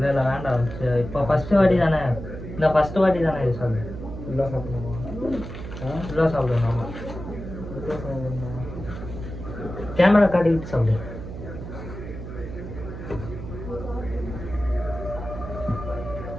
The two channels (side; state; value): right; noise; hum, 9 dB below the sound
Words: இல்லை வேண்டாம். இப்போ ஃபஸ்ட்டு வாட்டி தானே, இந்த ஃபஸ்ட்டு வாட்டி தானே இது சொல்லு. ஃபுல்லாக சாப்பிடணுமா? ஃபுல்லாக சாப்பிடணுமா? கேமரா காட்டிக்கிட்டு சாப்பிடு.